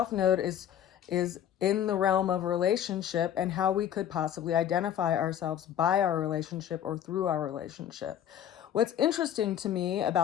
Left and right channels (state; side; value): quieter; right; 10.2 dB